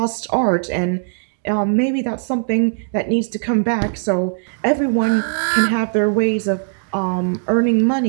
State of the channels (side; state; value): left; silent; digital silence